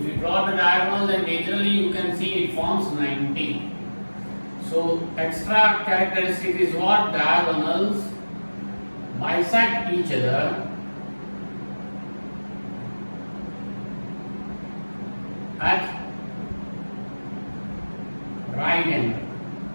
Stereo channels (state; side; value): inverted; both; correlation -1.00